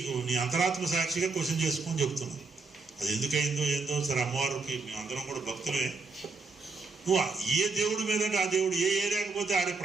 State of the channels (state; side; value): quieter; left; 4.1 dB